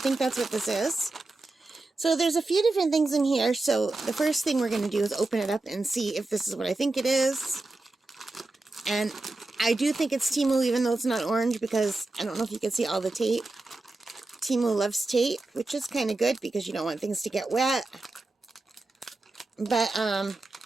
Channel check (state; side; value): quieter; left; 3.1 dB